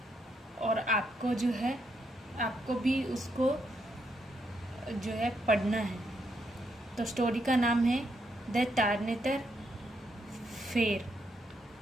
और आपको जो है आपको भी उसको जो है पढ़ना है। तो स्टोरी का नाम है द टार्नेटर फेर।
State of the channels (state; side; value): normal; both; correlation 0.77